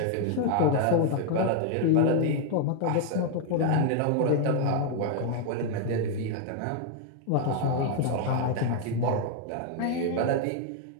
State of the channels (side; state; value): both; different; correlation 0.00